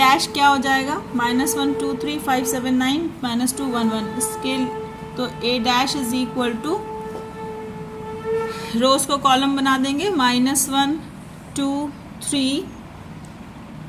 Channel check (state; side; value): identical; both; correlation 1.00